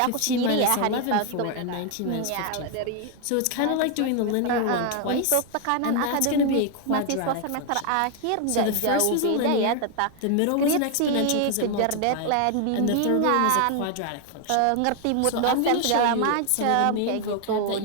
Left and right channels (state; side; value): different; both; correlation 0.00